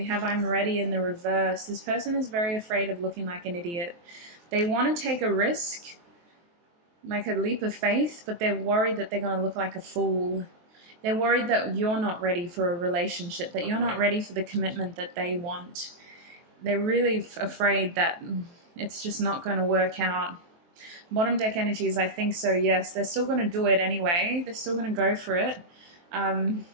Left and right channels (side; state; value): left; late; 23 ms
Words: have I'm ready in the reverse. This person is very afraid of looking like an idiot. They want to take a risk, like a leap of faith, but they're worried that they're going to look like a fool. They're worried that you're not ready for a relationship, that you're not ready for the commitment that they want. They're really afraid that it's just not going to work out. Bottom deck energies, I think so, yes. They're still going to do it anyway. They're still going to go for it.